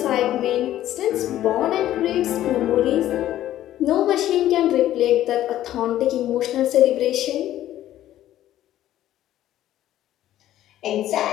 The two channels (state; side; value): quieter; right; 13.0 dB